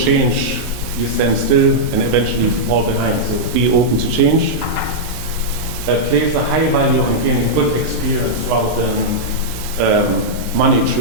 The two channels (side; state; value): both; normal; correlation -0.07